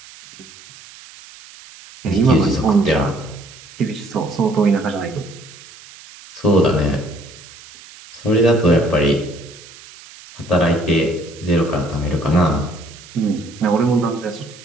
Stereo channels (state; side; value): noise; right; hiss, 20 dB below the sound